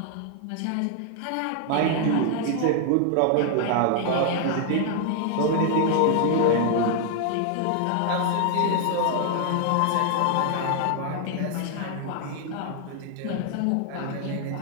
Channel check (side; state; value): both; different; correlation 0.00